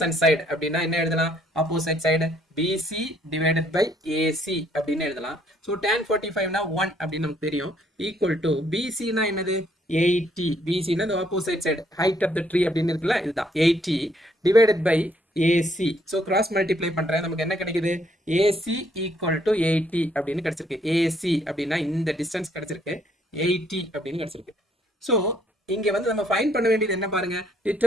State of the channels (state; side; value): normal; both; correlation 0.67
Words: side அப்படின்னா என்ன எழுதலாம்? opposite side BC divided by AC அப்படின்னு எழுதலாம். ஸோ tan 45 னா 1 அப்படின்னு நமக்கு தெரியும். equal to BC னா என்னது? 80. BC னா the opposite side, height of the tree அப்படின்னு இருக்குல்ல, இதுதான் 80 divided by AC. So cross multiply பண்றேன், நமக்கு என்ன கிடைக்குது? AC equal to 80 அப்படின்னு கிடைச்சிருக்கு. AC அப்படின்னா இந்த டிஸ்டன்ஸ் கிடைச்சிருக்கு, 80 அப்படின்னு கிடைச்சிருக்கு. ஸோ இங்க வந்து நம்ம ஃபைண்ட் பண்ண வேண்டியது என்ன பாருங்க?